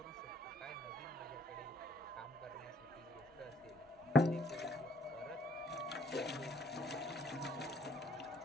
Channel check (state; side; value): normal; both; correlation 0.64